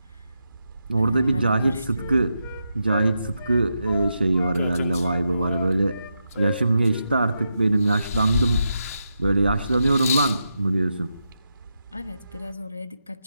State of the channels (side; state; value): both; inverted; correlation -0.86